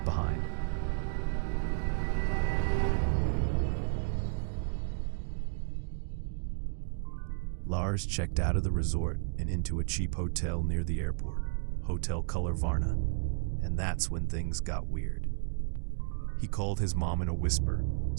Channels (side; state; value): left; silent; digital silence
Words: behind. Lars checked out of the resort and into a cheap hotel near the airport, Hotel Color Varna, and that's when things got weird. He called his mom in a whisper,